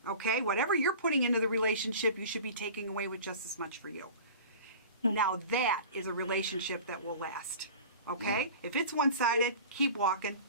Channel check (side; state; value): both; inverted; correlation -0.38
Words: Okay? Whatever you're putting into the relationship, you should be taking away with just as much for you. Now that is a relationship that will last. Okay? If it's one-sided, keep walking.